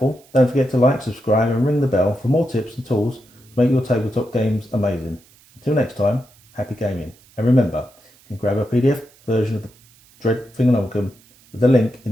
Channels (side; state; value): right; noise; hiss, 29 dB below the sound